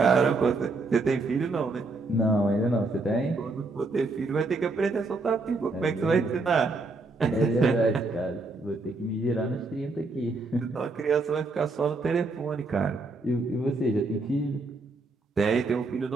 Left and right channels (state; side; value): quieter; left; 3.4 dB